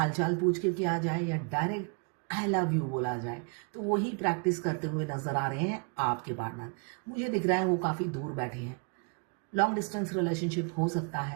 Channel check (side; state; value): left; quieter; 36.0 dB